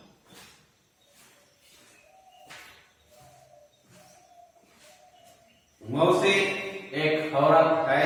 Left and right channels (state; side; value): identical; both; correlation 1.00